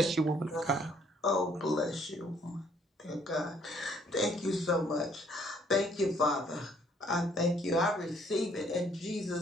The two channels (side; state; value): both; normal; correlation 0.64